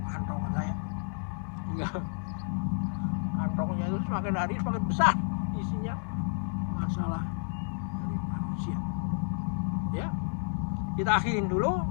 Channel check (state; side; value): silent; right; digital silence